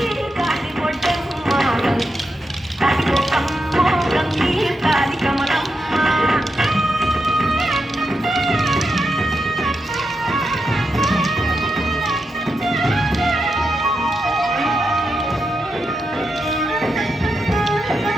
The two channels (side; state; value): both; normal; correlation 0.86